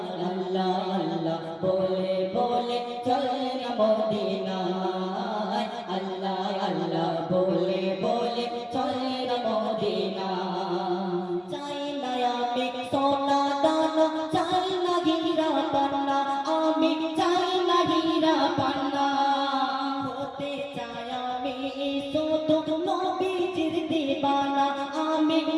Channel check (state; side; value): identical; both; correlation 1.00